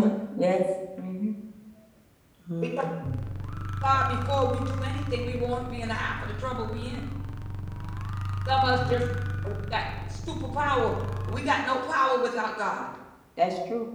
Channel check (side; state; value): both; identical; correlation 1.00